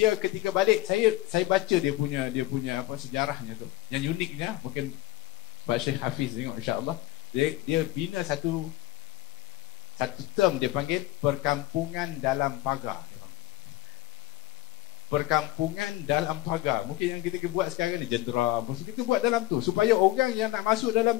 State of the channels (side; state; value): right; quieter; 17.6 dB